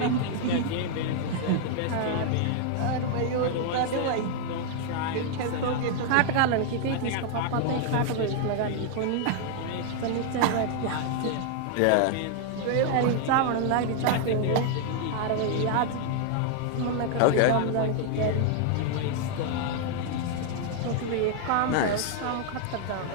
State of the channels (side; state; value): both; different; correlation 0.00